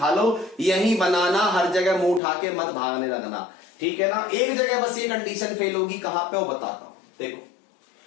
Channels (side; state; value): right; drops out; at 2.2 s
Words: लो, यही बनाना। हर जगह मुंह उठा के मत भागने लगना। ठीक है ना, एक जगह बस ये कंडीशन फेल होगी, कहां पे वो बताता हूं। देखो